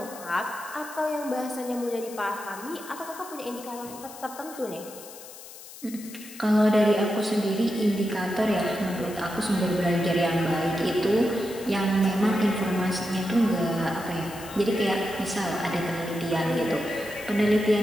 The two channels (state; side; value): noise; left; hiss, 16 dB below the sound